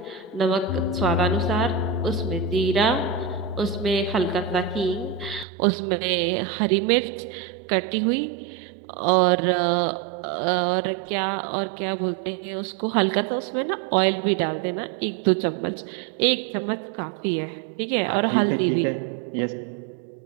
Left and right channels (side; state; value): left; drops out; at 5.5 s